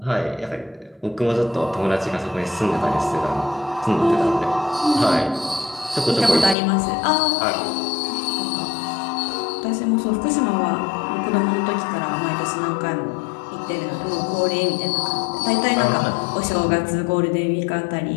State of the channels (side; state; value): right; drops out; at 6.6 s